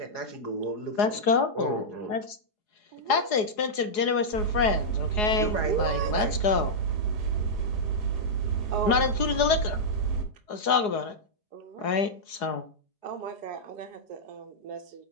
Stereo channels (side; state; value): right; late; 4.8 ms